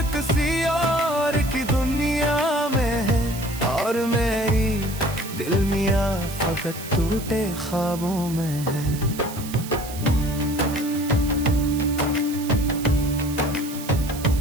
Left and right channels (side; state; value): right; noise; hiss, 13 dB below the sound